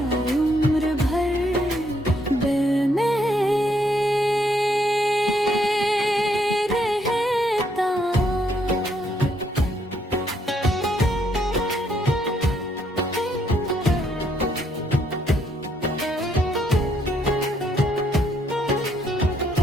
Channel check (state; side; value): normal; both; correlation 0.72